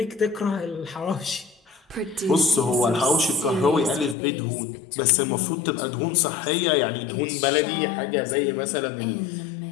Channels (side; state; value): right; drops out; at 4.2 s